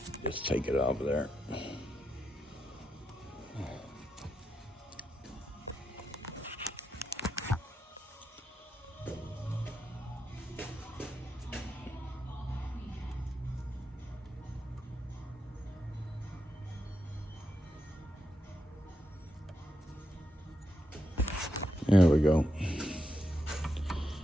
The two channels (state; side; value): normal; both; correlation 0.85